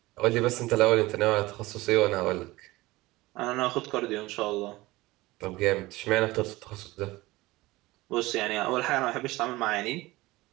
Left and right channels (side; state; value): left; quieter; 19.6 dB